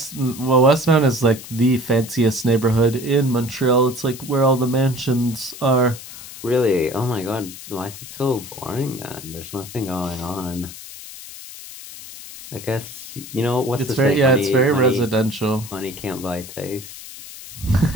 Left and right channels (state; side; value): noise; left; hiss, 14 dB below the sound